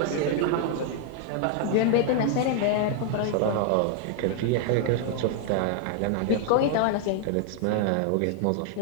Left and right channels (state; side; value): different; both; correlation 0.00